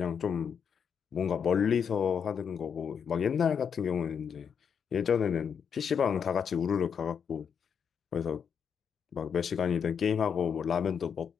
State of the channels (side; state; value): right; quieter; 7.1 dB